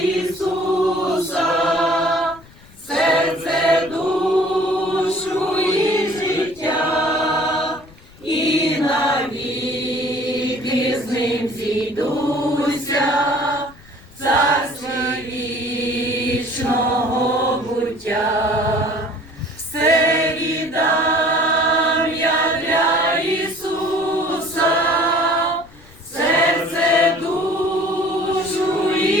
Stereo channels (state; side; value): noise; left; rumble, 24 dB below the sound